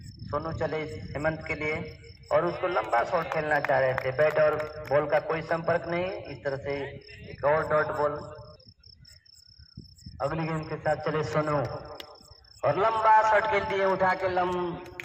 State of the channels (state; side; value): identical; both; correlation 1.00